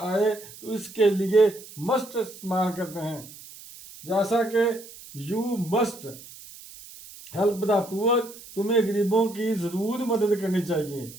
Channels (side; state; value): right; noise; hiss, 17 dB below the sound